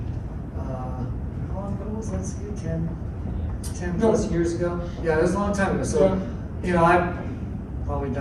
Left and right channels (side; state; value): both; identical; correlation 1.00